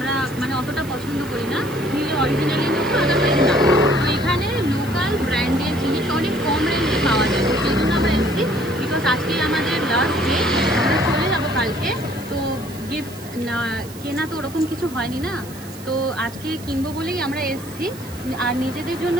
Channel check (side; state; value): right; noise; hiss, 18 dB below the sound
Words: মানে অতটা পছন্দ করি না, নিলে অরিজিনালি নেবো, আদারওয়াইজ না। তো এখানে লোকাল ব্র্যান্ডের জিনিস অনেক কম রেঞ্জে পাওয়া যায়, তো সেই জন্য আমরা এসেছি। বিকজ আজকে আমাদের লাস্ট ডে, আমরা চলে যাবো কালকে। তো গিফট না কেনা তো ওরকম কিছু হয়নি না, তো আজকে কিনবো বলেই আমরা এসেছি। আর নিজেদের জন্য